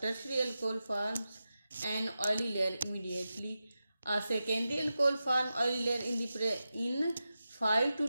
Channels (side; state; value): both; inverted; correlation -0.92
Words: tertiary alcohol forms an oily layer immediately. A secondary alcohol forms oily layer in 5 to